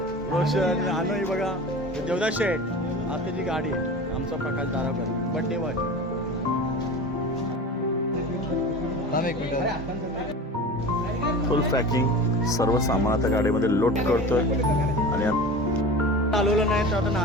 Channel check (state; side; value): normal; both; correlation 0.34